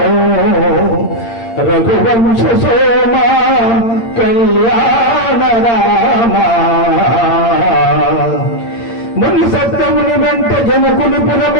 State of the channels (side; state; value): right; late; 8.7 ms